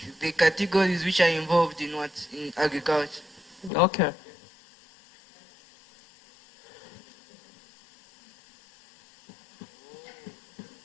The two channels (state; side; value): drops out; right; at 3.7 s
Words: the categories which are involved in what in agriculture. Okay.